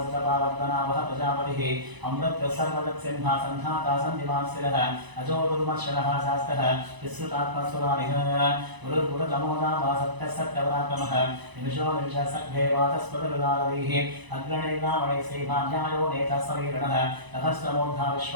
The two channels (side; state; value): left; late; 1.0 ms